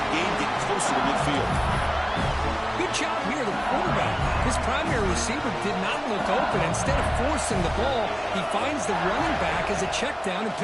gain, getting closer to midfield. Good job here, the quarterback. His primary receiver did not look open. Instead of forcing the ball, he finds the running back as a check down and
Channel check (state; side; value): identical; both; correlation 1.00